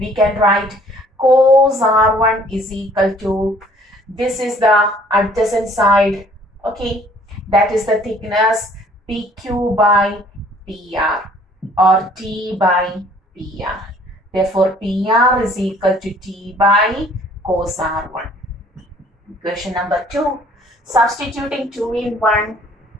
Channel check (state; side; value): normal; both; correlation 0.57